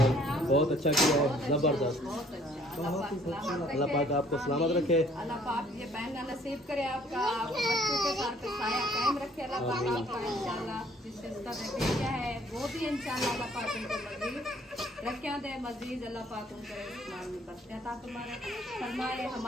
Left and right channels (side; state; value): both; normal; correlation 0.60